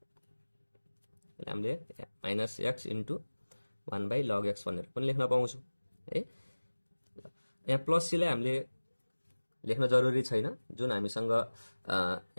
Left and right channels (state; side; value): inverted; both; correlation -1.00